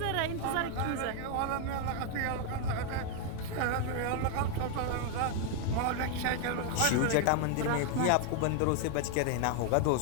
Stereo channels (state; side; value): different; both; correlation 0.00